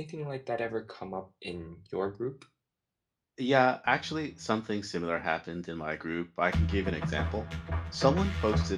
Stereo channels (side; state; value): both; identical; correlation 1.00